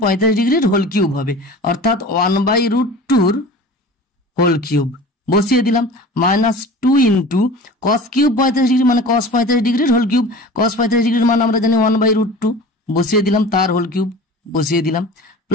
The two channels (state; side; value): normal; both; correlation 0.38